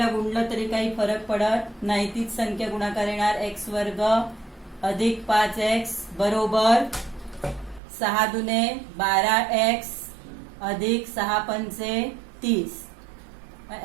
गुणलं तरी काही फरक पडत नाही, तीच संख्या गुणाकार येणार. x वर्ग अधिक 5x बरोबर 6 दुने 12x अधिक 6 पंचे 30.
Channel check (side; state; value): left; drops out; at 7.8 s